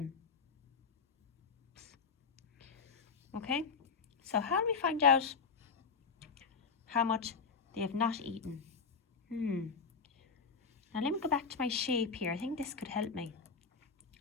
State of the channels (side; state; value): right; quieter; 5.3 dB